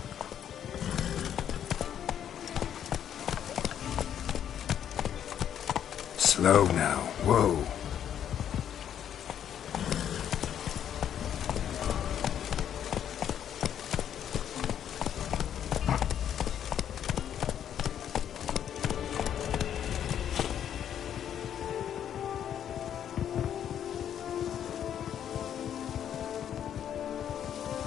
Slow now. Whoa.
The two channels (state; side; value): quieter; right; 9.6 dB